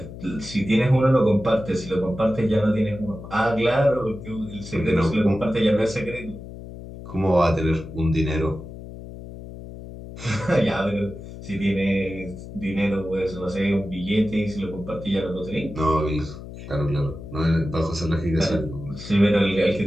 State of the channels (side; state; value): left; noise; hum, 13 dB below the sound